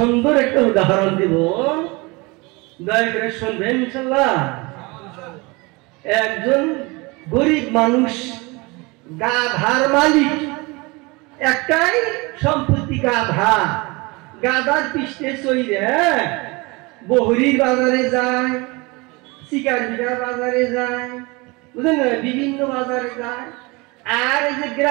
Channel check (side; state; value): left; quieter; 25.7 dB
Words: একটা উদাহরণ দিব, দয়া করে শুনবেন ইনশাআল্লাহ। একজন গরিব মানুষ, গাধার মালিক, একটাই সম্পত্তি গাধা। গাধার পৃষ্ঠে চইরে বহরির বাজারে যায়, শিকারবিঘা বাজারে যায়, বুঝলেন না, বিভিন্ন বাজারে যায়। আর এই যে